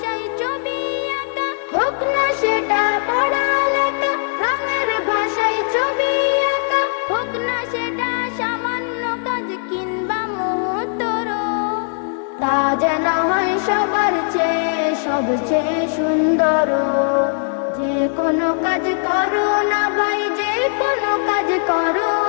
ছবি আঁকা, হোক না সেটা পড়ালেখা, রঙের ভাষায় ছবি আঁকা, হোক না সেটা সামান্য কাজ কিংবা মুহূর্তর, তা যেন হয় সবার চেয়ে সবচেয়ে সুন্দর। যে কোনো কাজ করো না ভাই, যে কোনো কাজ করো,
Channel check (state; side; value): silent; right; 66 dB below the other